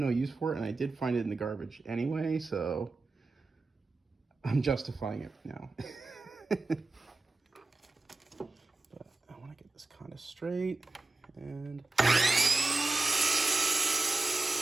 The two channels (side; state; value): left; quieter; 3.3 dB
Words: use for it, and I did find it in the garbage anyway, so I'm justifying it now. But I want to get this kind of straight, and so